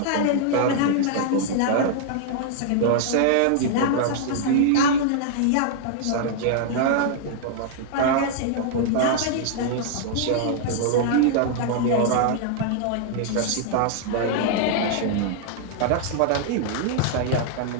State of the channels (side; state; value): both; different; correlation -0.01